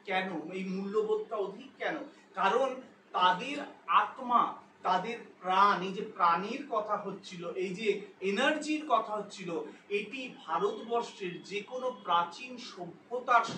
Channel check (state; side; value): identical; both; correlation 1.00